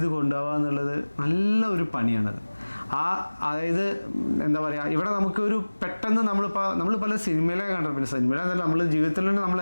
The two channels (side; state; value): both; inverted; correlation -1.00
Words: കൊണ്ടുപോകുക എന്നുള്ളത് നല്ല ഒരു പണിയാണത്. അതായത് എന്താ പറയുക, ഇവിടെ നമുക്ക് ഒരു പെട്ടെന്ന് നമ്മൾ പല സിനിമയിലൊക്കെ കണ്ടിട്ടുണ്ട്. സിനിമയിലെന്നല്ല, നമ്മൾ ജീവിതത്തിൽ തന്നെ നമ്മൾ